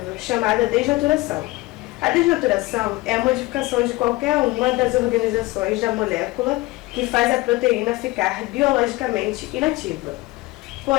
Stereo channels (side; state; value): right; quieter; 20.8 dB